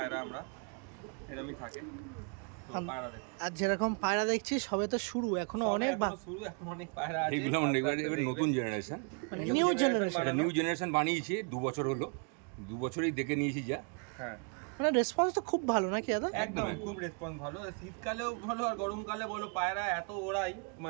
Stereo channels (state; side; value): quieter; left; 38.9 dB